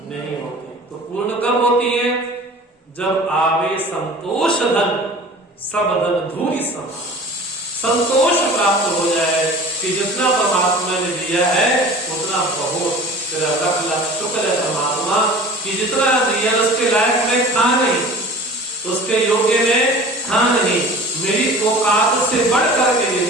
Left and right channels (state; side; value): normal; both; correlation 0.42